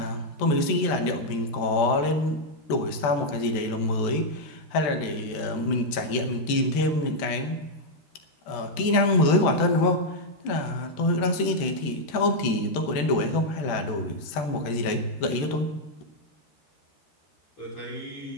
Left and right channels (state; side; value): late; right; 13 ms